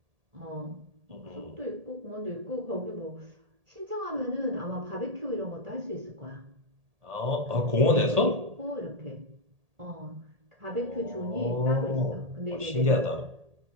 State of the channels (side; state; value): left; late; 1.8 ms